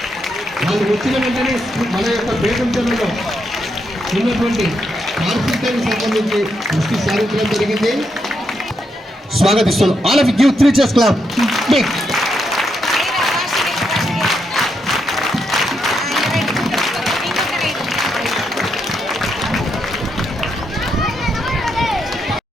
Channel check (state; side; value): normal; both; correlation 0.80